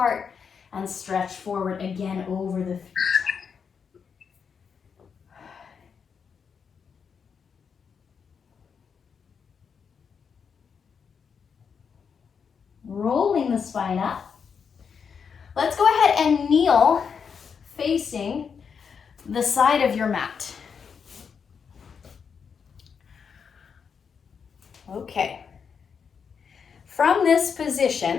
and stretch forward again over the feet. Rolling the spine up. Let's go ahead and kneel facing the side of your mat. Okay. From this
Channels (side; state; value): right; quieter; 6.4 dB